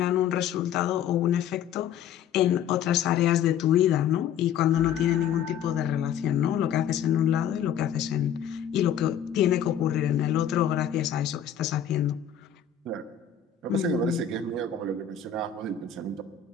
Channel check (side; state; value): right; quieter; 8.8 dB